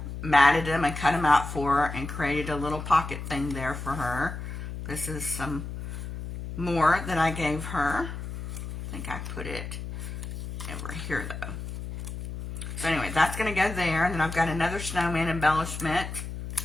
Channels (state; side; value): noise; left; hum, 7 dB below the sound